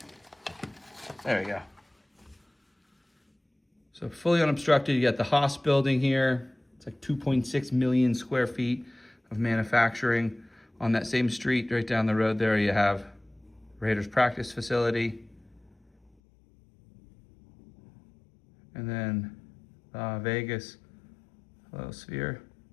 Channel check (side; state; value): right; drops out; at 16.1 s